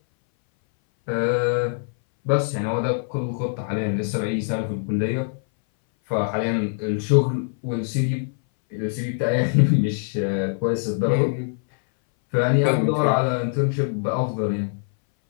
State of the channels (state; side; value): silent; right; 60 dB below the other